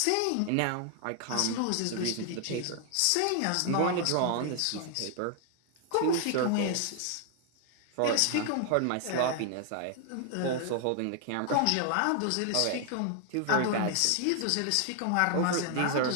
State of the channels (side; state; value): both; different; correlation 0.00